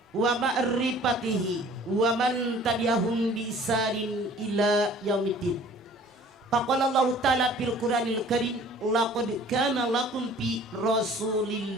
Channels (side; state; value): both; normal; correlation 0.50